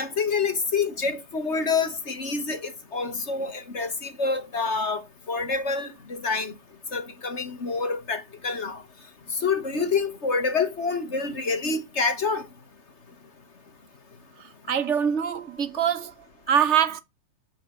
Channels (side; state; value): right; late; 3.3 ms